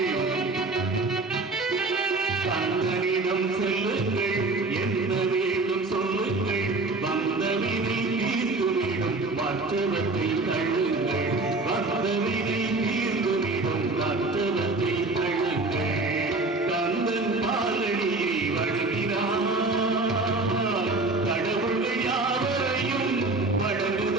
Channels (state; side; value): quieter; left; 3.3 dB